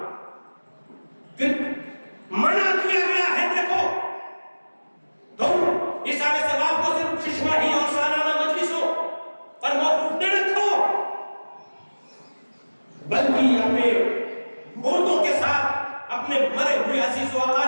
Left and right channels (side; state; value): both; inverted; correlation -1.00